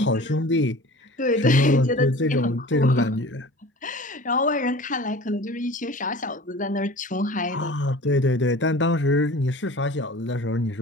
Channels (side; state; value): both; normal; correlation 0.41